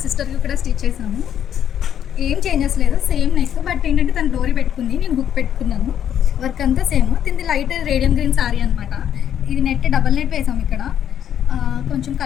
సిస్టర్కి కూడా స్టిచ్ చేసాము. ఏం చేంజెస్ లేదు, సేమ్ నెక్. బట్ ఏంటంటే తను డోరీ పెట్టుకుంది, నేను హుక్ పెట్టుకున్నాను. వర్క్ అంతా సేమ్. తింది లైట్ రేడియం గ్రీన్ సారీ అనమాట. ఇది నెట్ డబల్ నెట్ వేసాము ఇక్కడ. కొంచెం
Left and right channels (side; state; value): right; quieter; 9.7 dB